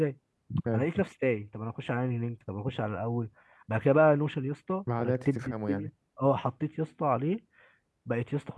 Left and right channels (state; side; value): identical; both; correlation 1.00